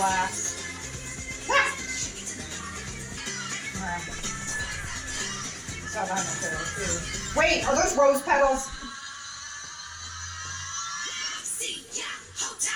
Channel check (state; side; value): identical; both; correlation 1.00